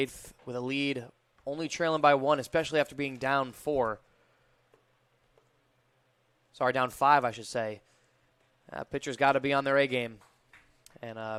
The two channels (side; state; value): both; identical; correlation 1.00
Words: with a lead, only trailing by 1, especially after being down 4. Sorry, down 5, I should say. Pitcher's got to be on their A game. And